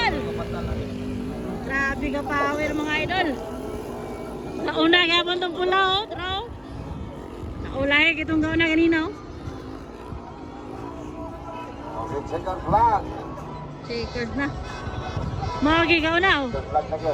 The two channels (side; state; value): both; identical; correlation 1.00